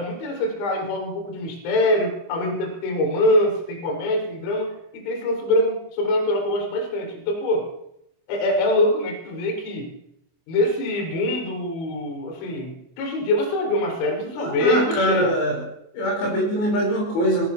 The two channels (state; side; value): late; right; 24 ms